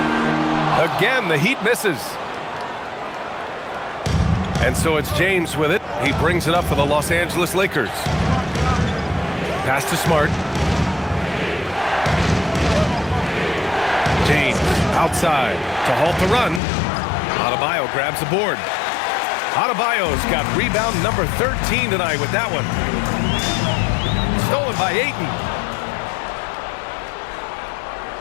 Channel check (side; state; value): right; drops out; at 16.6 s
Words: Again, the Heat misses. And so it's James with it. He brings it up for the Los Angeles Lakers. Pass to Smart. James outside to halt the run. Adebayo grabs the board. Adebayo's got rebound number 13 tonight with that one. Stolen by Ayton.